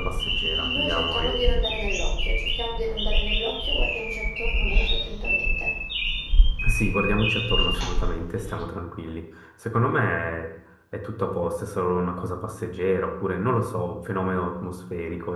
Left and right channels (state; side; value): identical; both; correlation 1.00